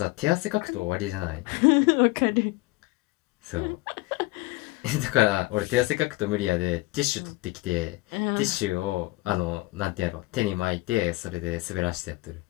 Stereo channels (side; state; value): right; quieter; 21.4 dB